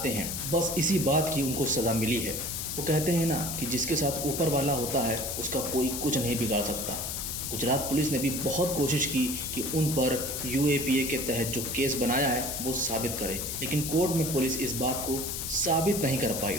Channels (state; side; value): noise; left; hiss, 4 dB below the sound